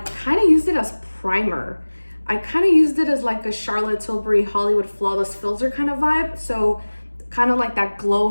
kind of used it as primer. I kind of used it as like a Charlotte Tilbury Hollywood Flawless Filter kind of vibe. So kind of like that glow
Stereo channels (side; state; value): both; inverted; correlation -1.00